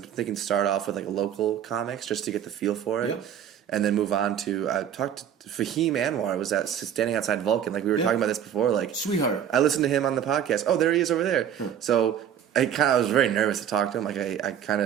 thinking start off with like local comics just to get the feel for it. Yep. And then move on to I talked to Fahim Anwar. I was standing outside Vulcan, like we were talking about this before. Like Sweetheart. I listened to him on the podcast. Oh, there he is over there. So I was very nervous to talk to him. Like I kind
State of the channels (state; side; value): quieter; left; 9.3 dB